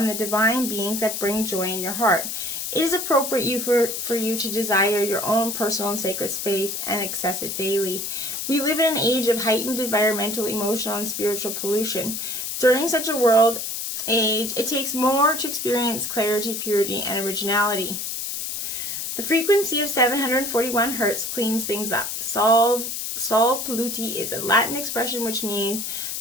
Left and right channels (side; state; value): left; noise; hiss, 4 dB below the sound